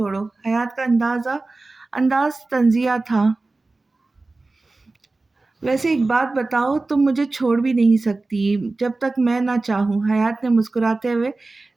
حیات کا انداز طنزیہ تھا۔ ویسے ایک بات بتاؤ، تم مجھے چھوڑ بھی نہیں سکتی جب تک میں نہ چاہوں۔ حیات نے مسکراتے ہوئے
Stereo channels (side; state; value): left; quieter; 3.3 dB